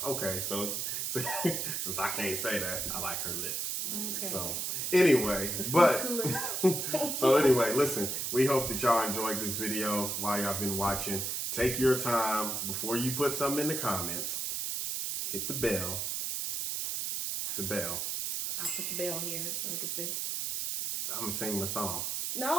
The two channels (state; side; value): noise; right; hiss, 1 dB below the sound